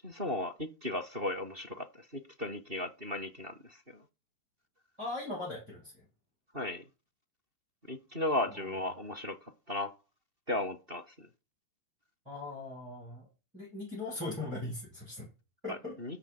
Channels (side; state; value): left; late; 2.7 ms